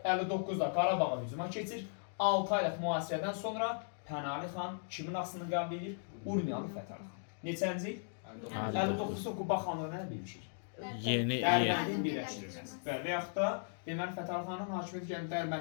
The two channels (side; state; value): right; silent; digital silence